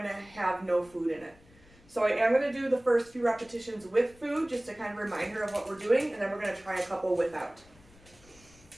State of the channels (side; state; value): left; noise; rumble, 26 dB below the sound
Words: to have no food in it. So I am going to do the first few repetitions with food just to kind of remind her of what we're doing, and then we're going to try a couple without.